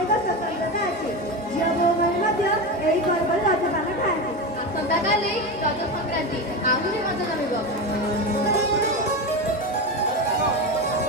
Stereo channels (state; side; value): normal; both; correlation 0.19